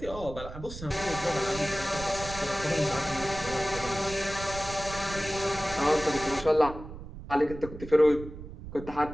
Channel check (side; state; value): right; noise; rumble, 12 dB below the sound